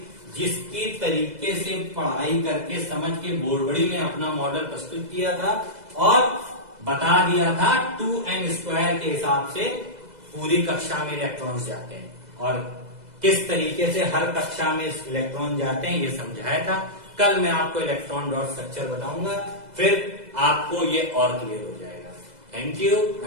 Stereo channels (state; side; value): late; left; 2.0 ms